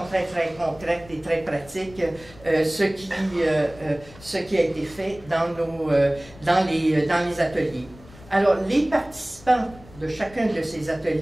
très, très concrète et très pratique, ce qui a été fait dans les ateliers. Alors, les participants de chacun de ces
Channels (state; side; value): noise; left; rumble, 21 dB below the sound